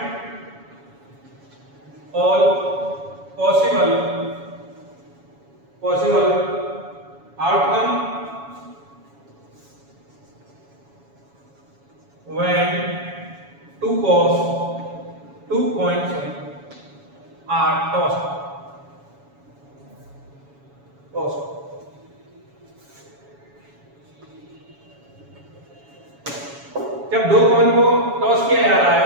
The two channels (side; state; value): left; late; 7.2 ms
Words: all possible outcome when two coins are tossed. जब दो कॉइन को टॉस किया जा रहा है